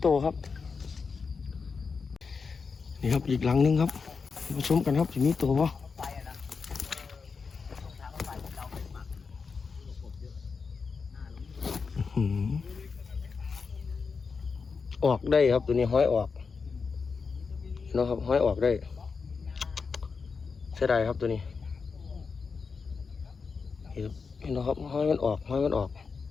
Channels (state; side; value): quieter; right; 5.1 dB